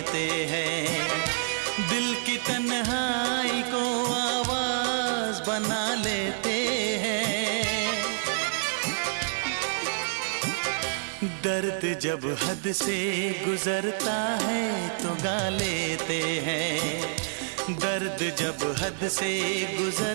हैं। दिल की तन्हाई को आवाज बना लेते हैं। दर्द जब हद से गुजरता है तो गा लेते हैं। दर्द जब हद से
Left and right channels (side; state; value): left; silent; 60 dB below the other